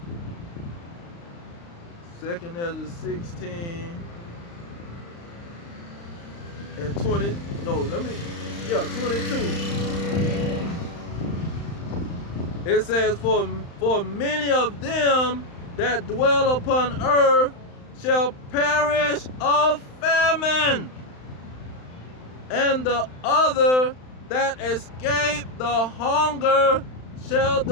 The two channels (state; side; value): late; right; 35 ms